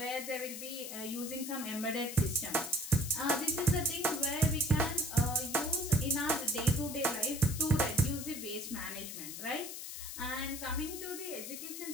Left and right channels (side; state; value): left; noise; hiss, 8 dB below the sound